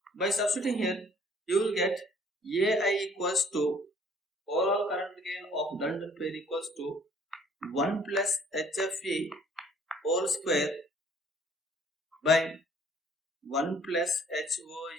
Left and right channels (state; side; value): normal; both; correlation 0.57